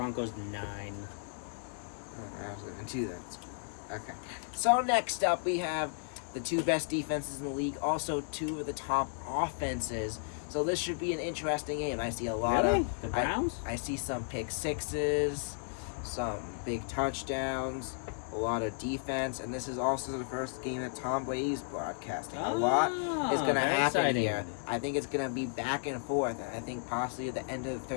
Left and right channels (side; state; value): right; silent; digital silence